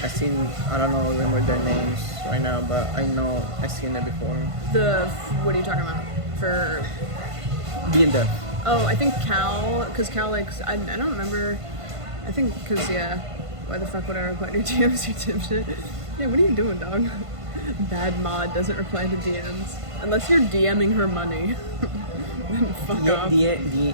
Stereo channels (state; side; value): late; left; 1.5 ms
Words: I seen. I don't know remember their names right now, but I know I seen it before. What are you talking about? For Being deaf. Oh, I think Cal, because Cal likes, I don't remember, I think, because, yeah, why the fuck would I reply to your DMs, you dipshit? Yeah, what are you doing, dog? Bad mod doesn't reply to DMs. Unless you're DMing her money. Then fuck off.